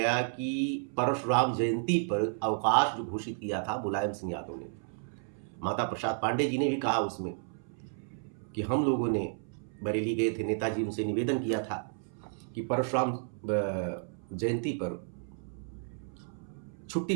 कि परशुराम जयंती पर अवकाश जो घोषित किया था मुलायम सिंह यादव ने, माता प्रसाद पांडे जी ने भी कहा उसमें कि हम लोगों ने बरेली गए थे, नेताजी उनसे निवेदन किया था कि परशुराम जयंती पर छुट्टी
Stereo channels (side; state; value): left; silent; 56 dB below the other